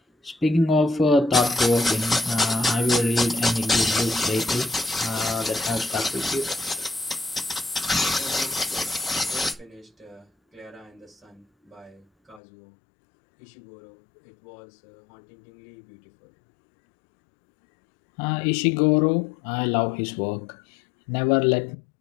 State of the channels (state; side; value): drops out; right; at 12.4 s